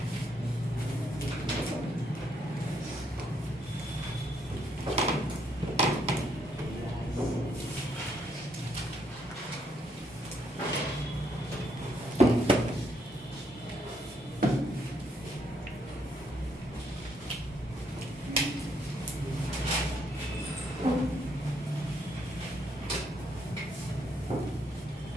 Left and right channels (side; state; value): both; normal; correlation 0.73